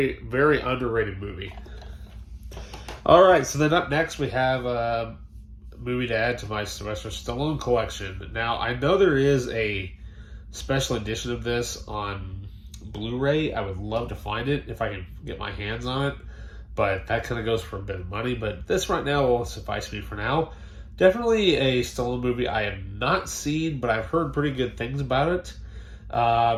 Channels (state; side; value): identical; both; correlation 1.00